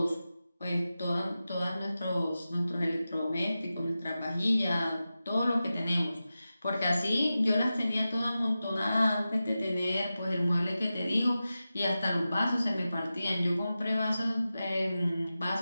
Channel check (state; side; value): inverted; both; correlation -0.93